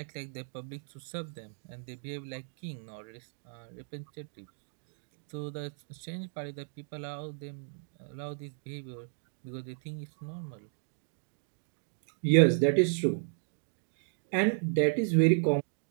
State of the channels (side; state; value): left; silent; digital silence